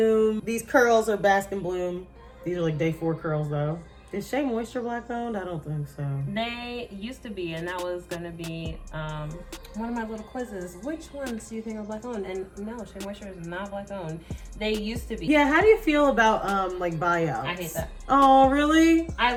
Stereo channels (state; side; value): identical; both; correlation 1.00